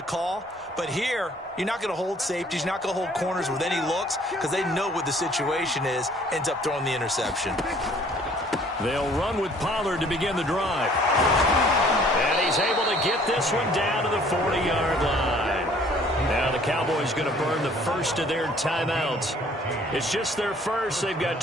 call. But here, you're not going to hold safeties. You're not going to hold corners with any looks because they know what the situation is. Ends up throwing the interception. They'll run with Pollard to begin the drive. And he's able to get this one down to the 40-yard line. Now the Cowboys going to burn the first of their timeouts. It's just their first. They've got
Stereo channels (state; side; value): normal; both; correlation 0.57